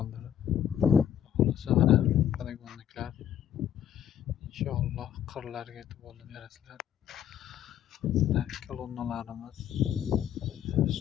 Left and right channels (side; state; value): right; quieter; 10.1 dB